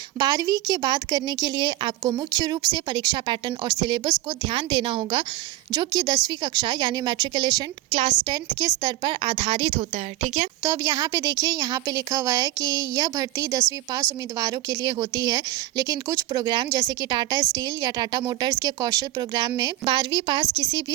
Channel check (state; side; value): quieter; left; 16.2 dB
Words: 12वीं के बाद करने के लिए आपको मुख्य रूप से परीक्षा पैटर्न और सिलेबस को ध्यान देना होगा, जो कि 10वीं कक्षा यानी मैट्रिकुलेशन क्लास 10th के स्तर पर आधारित होता है। ठीक है, तो अब यहाँ पे देखिए, यहाँ पे लिखा हुआ है कि यह भर्ती 10वीं पास उम्मीदवारों के लिए होती है, लेकिन कुछ प्रोग्राम जैसे कि टाटा स्टील या टाटा मोटर्स के कौशल प्रोग्राम में 12वीं पास किसी